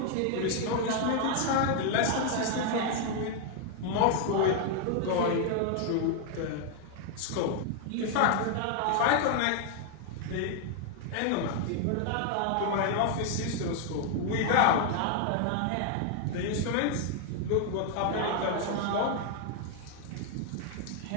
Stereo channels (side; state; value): both; different; correlation 0.00